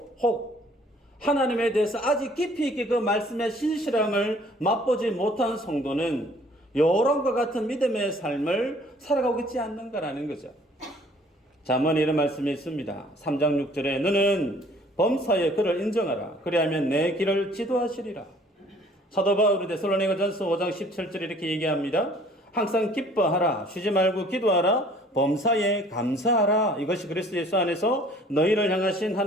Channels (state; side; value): normal; both; correlation 0.55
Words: 혹 하나님에 대해서 아직 깊이 있게 그 말씀의 신실함을 맛보지 못한 성도는 요람과 같은 믿음의 삶을 살아가고 있지 않는가라는 거죠. 잠언에 이런 말씀이 있습니다. 3장 6절에 너는 범사에 그를 인정하라. 그리하면 내 길을 지도하시리라. 사도 바울이 데살로니가전서 5장 17절에 이렇게 얘기합니다. 항상 기뻐하라. 쉬지 말고 기도하라. 범사에 감사하라. 이것이 그리스도 예수 안에서 너희를 향하신